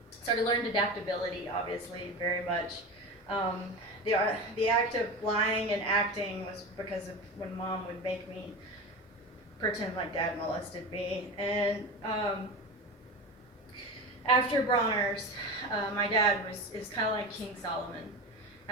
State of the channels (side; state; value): both; normal; correlation 0.26